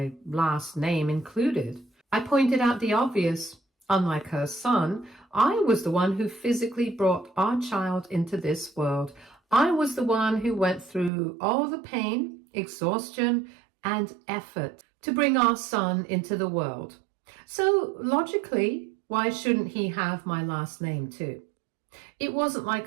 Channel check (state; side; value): drops out; left; at 11.1 s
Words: last name included. I pointed out the obvious. Unlike her son, I was the one who physically brought our child into this world. I was the one who went through all the pain, exhaustion, and effort to bring our son into the world. So logically, why shouldn't he have my last name too? It wasn't